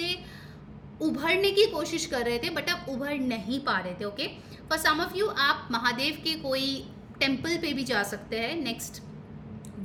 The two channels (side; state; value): both; identical; correlation 1.00